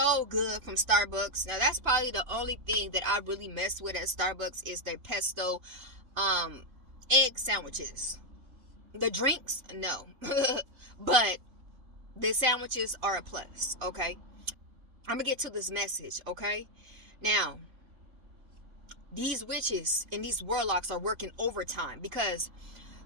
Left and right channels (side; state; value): left; late; 3.5 ms